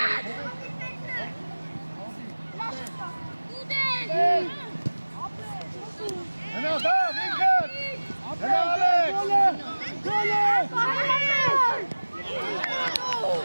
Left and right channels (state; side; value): inverted; both; correlation -1.00